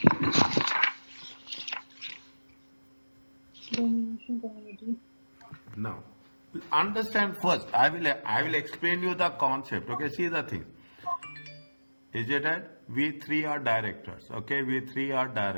Domination community. Now, understand first. I will explain you the concept. Okay, see the thing. Is it right? We three are directors. Okay, we three are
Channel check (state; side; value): inverted; both; correlation -1.00